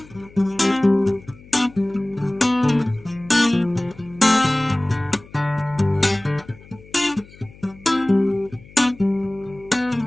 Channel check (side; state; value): left; noise; hum, 22 dB below the sound